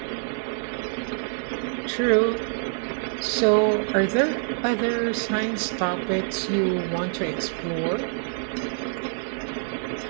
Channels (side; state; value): left; silent; digital silence